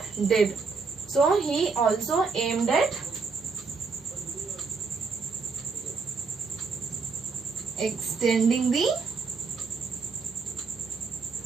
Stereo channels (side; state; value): left; quieter; 4.7 dB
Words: did. So he also aimed at extending the